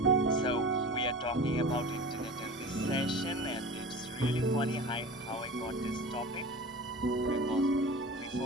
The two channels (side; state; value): both; normal; correlation 0.35